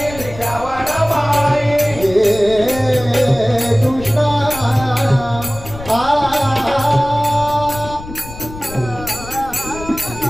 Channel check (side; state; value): left; noise; rumble, 14 dB below the sound